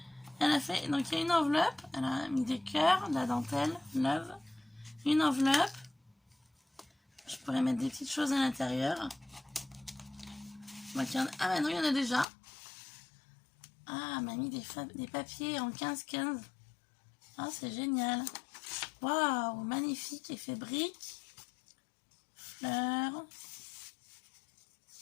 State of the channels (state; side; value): drops out; right; at 12.2 s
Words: elle a fait, donc il y a une enveloppe. Elle a mis des cœurs, de la dentelle, love. Une enveloppe. Je pourrais mettre des petites choses à l'intérieur. Ah bah non, il y en a déjà. Ah, elle m'a mis des papiers en 15-15. Ah, c'est génial. Waouh, magnifique, effet brique. Fleurs.